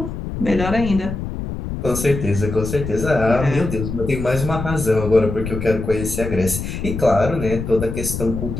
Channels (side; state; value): left; noise; rumble, 6 dB below the sound